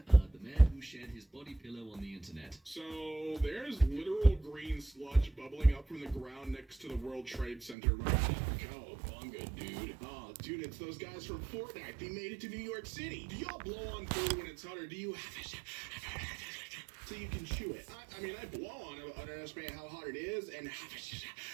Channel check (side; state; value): left; drops out; at 7.8 s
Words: the man who shared his body pillow on the internet. So there's literal green sludge bubbling up from the ground next to the World Trade Center right now. Cowabunga, dude. Oh, dude, it's those guys from Fortnite. They made it to New York City. Do y'all blow on food when it's hot, or do you so you can chew it? I mean, I blow on it, underestimate how hot it is, and